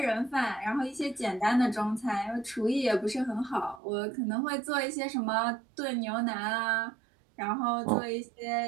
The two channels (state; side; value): drops out; left; at 3.8 s